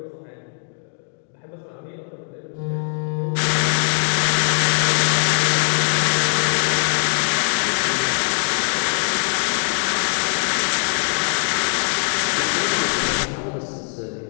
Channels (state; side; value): silent; right; digital silence